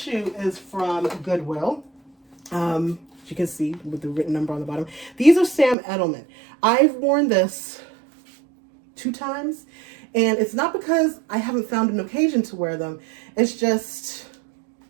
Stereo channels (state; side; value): drops out; left; at 5.8 s